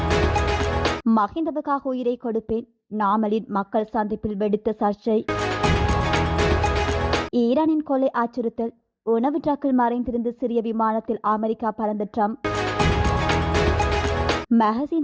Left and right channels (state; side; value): identical; both; correlation 1.00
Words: மஹிந்தவுக்காக உயிரை கொடுப்பேன், நாமலின் மக்கள் சந்திப்பில் வெடித்த சர்ச்சை. ஈரானின் கொலை அச்சுறுத்தல், உணவு ட்ரக்கில் மறைந்திருந்து சிறிய விமானத்தில் அமெரிக்கா பறந்த ட்ரம்ப்.